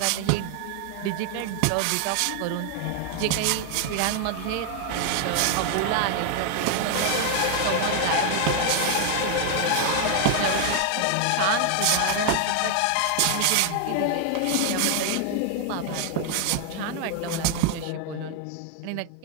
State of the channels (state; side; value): different; both; correlation 0.00